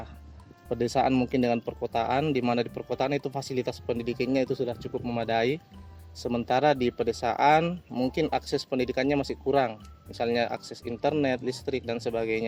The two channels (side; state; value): both; identical; correlation 1.00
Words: pedesaan mungkin dengan perkotaan, di mana di perkotaan itu fasilitas pendidikannya itu sudah cukup memadai, sementara di pedesaan mungkin akses pendidikannya masih kurang, misalnya akses internet, listrik, dan